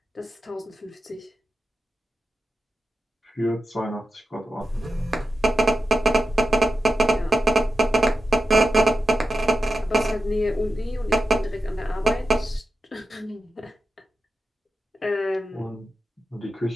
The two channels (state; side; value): normal; both; correlation 0.91